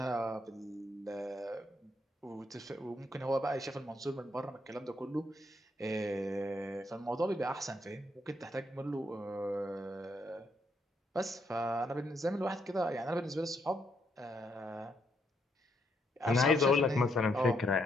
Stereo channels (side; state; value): both; normal; correlation 0.75